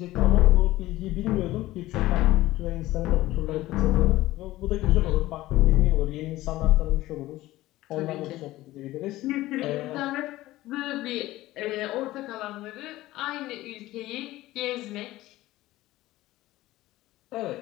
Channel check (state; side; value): quieter; right; 16.9 dB